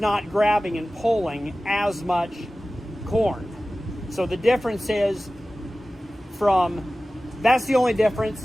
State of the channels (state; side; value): normal; both; correlation 0.96